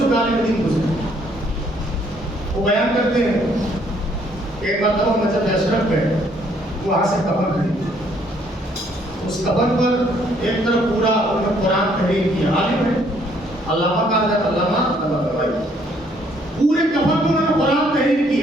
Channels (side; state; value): both; normal; correlation 0.66